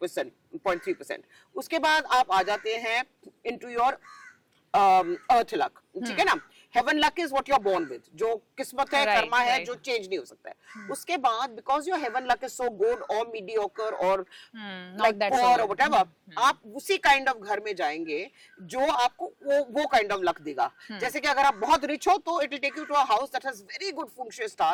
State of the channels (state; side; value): identical; both; correlation 1.00